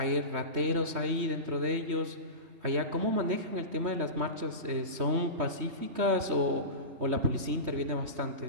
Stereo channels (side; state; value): left; late; 3.2 ms